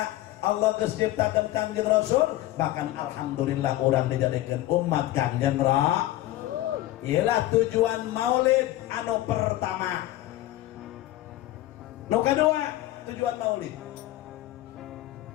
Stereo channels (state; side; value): quieter; right; 15.6 dB